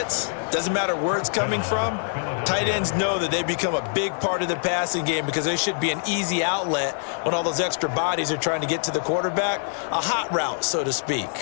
doesn't matter where it's coming from, tight ends know that they become a big part of the passing game because they should be an easy outlet when all those extra bodies are trying to get to the quarterback. A hot route, so to speak.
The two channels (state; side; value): silent; right; digital silence